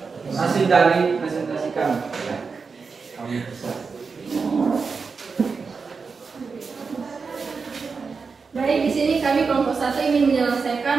hasil dari presentasi kami. Baik, di sini kami kelompok 1 ingin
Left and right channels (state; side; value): quieter; left; 5.0 dB